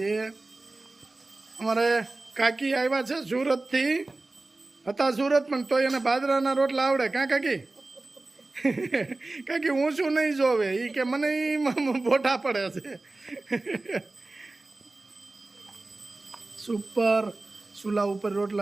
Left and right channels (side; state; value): left; quieter; 3.1 dB